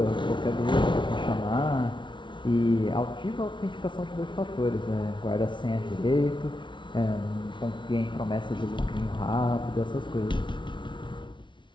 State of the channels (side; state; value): right; late; 0.24 ms